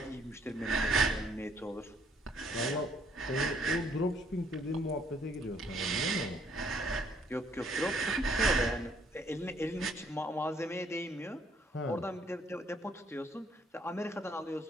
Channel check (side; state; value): both; normal; correlation 0.66